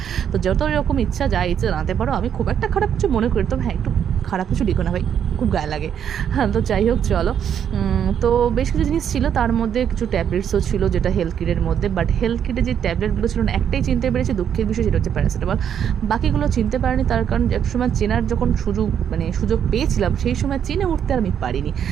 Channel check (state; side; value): quieter; left; 8.7 dB